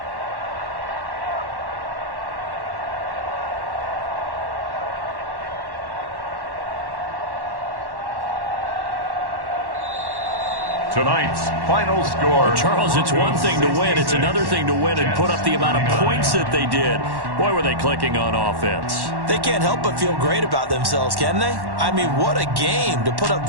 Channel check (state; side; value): late; left; 1.1 ms